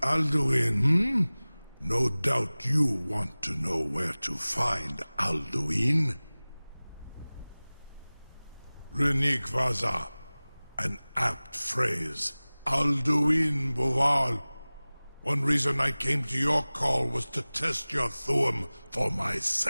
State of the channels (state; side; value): inverted; both; correlation -0.99